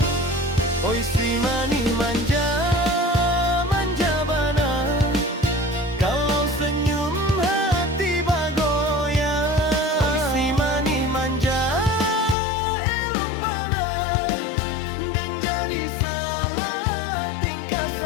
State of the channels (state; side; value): drops out; right; at 12.4 s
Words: Oi si mani manja, manja bana, kalau senyum hati bagoyang. Oi si mani manja, elok bana, dan jadi salah tingkah